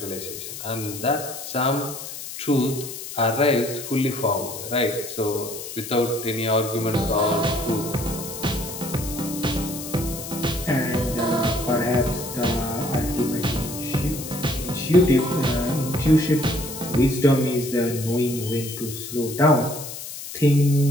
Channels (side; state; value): left; noise; hiss, 10 dB below the sound